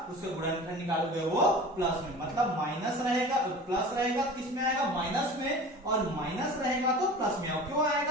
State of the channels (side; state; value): both; normal; correlation 0.38